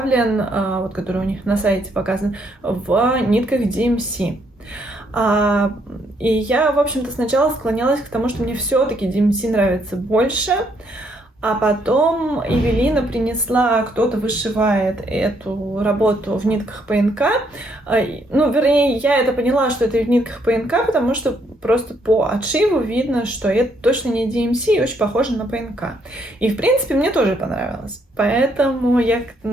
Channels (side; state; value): both; normal; correlation 0.72